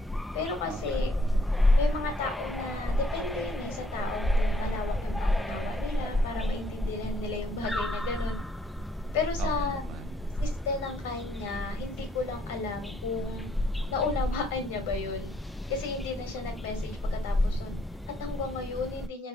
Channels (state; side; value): normal; both; correlation 0.68